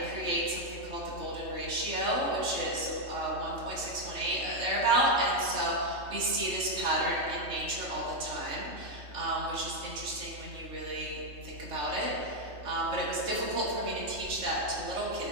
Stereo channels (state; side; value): late; left; 3.3 ms